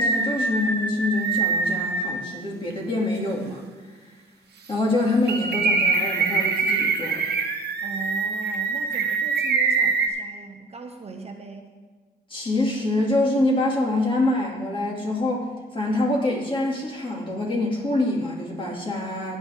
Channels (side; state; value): both; normal; correlation 0.49